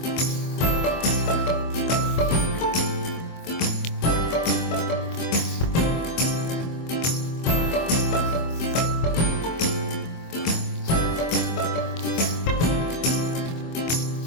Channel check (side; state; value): right; late; 24 ms